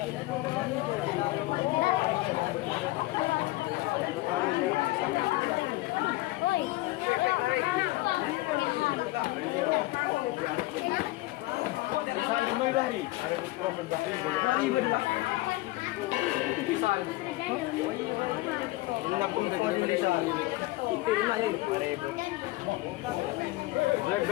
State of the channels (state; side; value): quieter; right; 19.4 dB